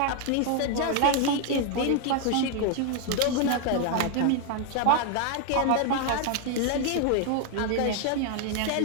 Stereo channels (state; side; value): different; both; correlation 0.01